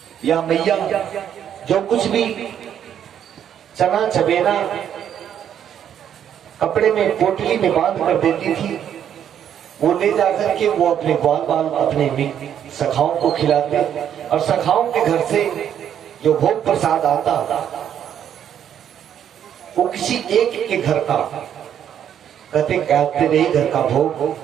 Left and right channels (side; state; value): left; quieter; 9.5 dB